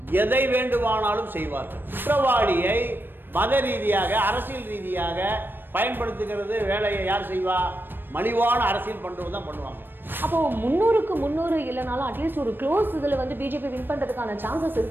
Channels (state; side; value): late; left; 0.096 ms